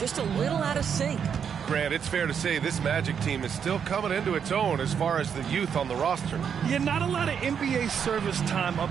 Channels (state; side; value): quieter; left; 7.5 dB